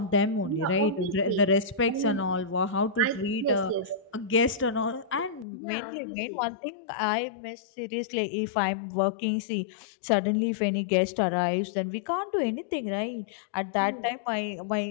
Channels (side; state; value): right; drops out; at 5.5 s